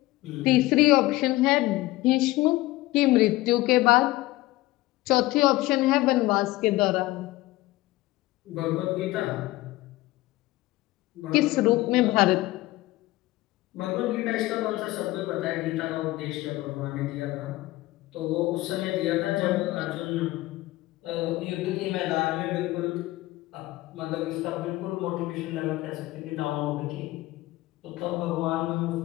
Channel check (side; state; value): right; quieter; 18.5 dB